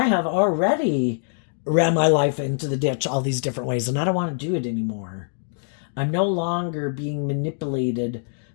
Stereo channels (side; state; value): right; silent; digital silence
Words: have already ran my life into the ditch all these different ways, and I don't want to do it anymore. I'm no longer being manipulated